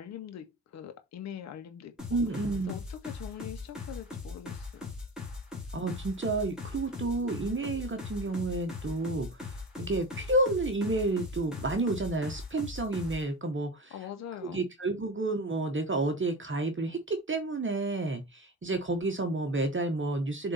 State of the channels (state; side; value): normal; both; correlation 0.31